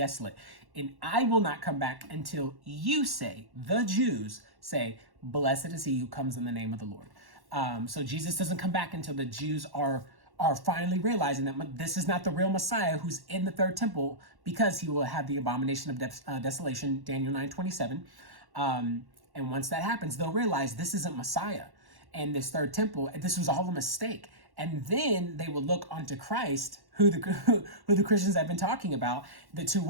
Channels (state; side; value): late; left; 1.1 ms